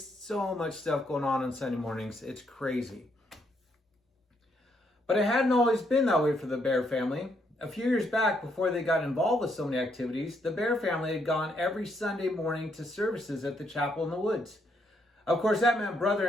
So much stuff going on Sunday mornings. It's crazy. But it hadn't always been that way for the Bear family. A few years back, before they got involved with so many activities, the Bear family had gone every Sunday morning to services at the chapel in the woods. Of course, that meant brother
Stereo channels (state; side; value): normal; both; correlation 0.74